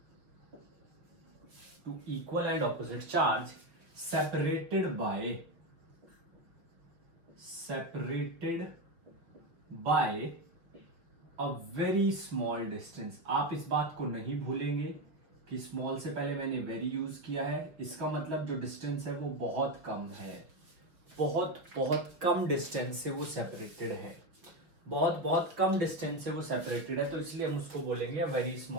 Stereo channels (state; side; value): late; left; 5.8 ms